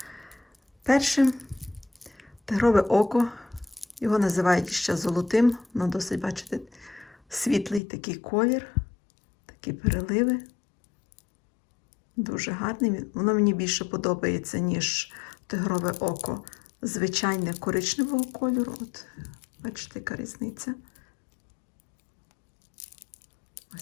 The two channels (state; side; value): drops out; right; at 7.8 s